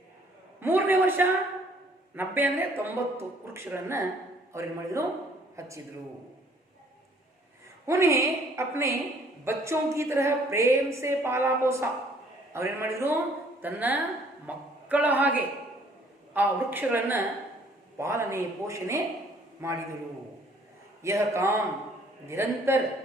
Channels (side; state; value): both; normal; correlation 0.60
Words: ಮೂರನೇ ವರ್ಷ 90 ಅಂದರೆ 90 ವೃಕ್ಷಗಳನ್ನ ಅವ್ರೇನು ಮಾಡಿದ್ರು, ಹಚ್ಚಿದ್ರು. उन्हें अपने बच्चों की तरह प्रेम से पाला पोसा. ಅವ್ರೇನು ಮಾಡಿದ್ರು, ತನ್ನ ಮಕ್ಕಳ ಹಾಗೆ ಆ ವೃಕ್ಷಗಳನ್ನ ಪಾಲನೆ ಪೋಷಣೆ ಮಾಡಿದರು. यह काम निरंतर